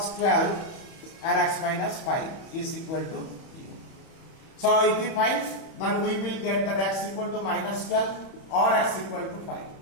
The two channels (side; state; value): right; late; 31 ms